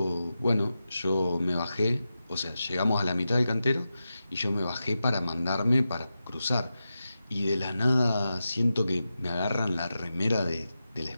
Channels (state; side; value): inverted; both; correlation -0.91